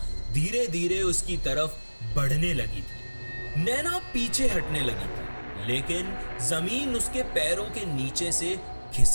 धीरे धीरे उसकी तरफ बढ़ने लगी थी। नैना पीछे हटने लगी थी, लेकिन जमीन उसके पैरों के नीचे से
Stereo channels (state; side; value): inverted; both; correlation -1.00